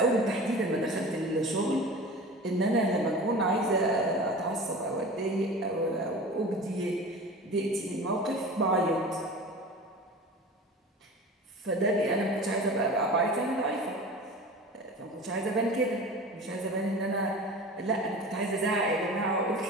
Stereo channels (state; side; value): normal; both; correlation 0.36